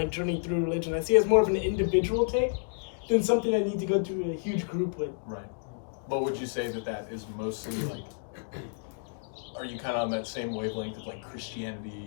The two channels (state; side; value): silent; right; digital silence